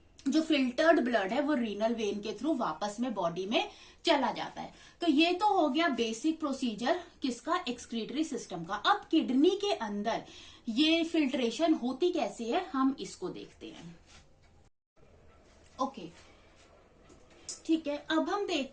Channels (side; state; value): both; identical; correlation 1.00